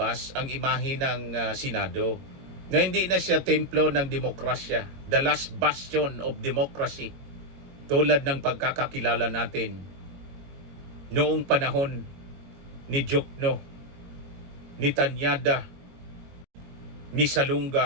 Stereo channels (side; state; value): left; late; 22 ms